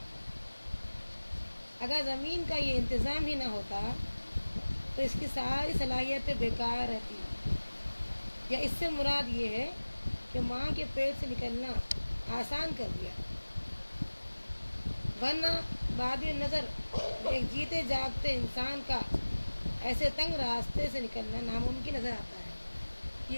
اگر زمین کا یہ انتظام ہی نہ ہوتا تو اس کی ساری صلاحیتیں بیکار رہتی، یا اس سے مراد یہ ہے کہ ماں کے پیٹ سے نکلنا آسان کر دیا، ورنہ بعد نظر ایک جیتے جاگتے انسان کا ایسے تنگ راستے سے نکلنا ناممکن نظر آتا ہے۔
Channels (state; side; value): inverted; both; correlation -1.00